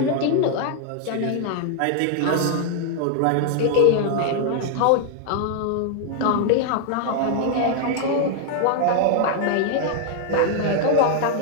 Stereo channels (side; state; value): both; different; correlation 0.00